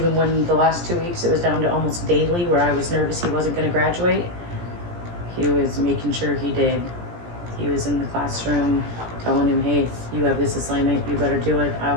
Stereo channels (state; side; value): late; left; 17 ms